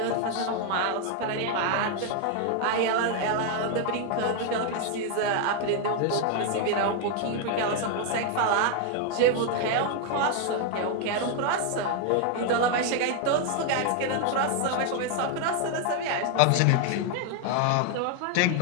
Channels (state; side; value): different; both; correlation 0.00